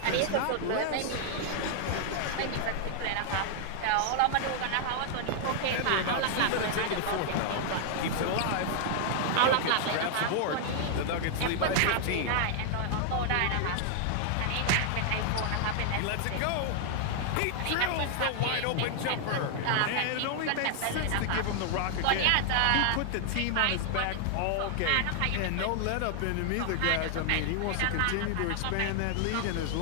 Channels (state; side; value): different; both; correlation 0.00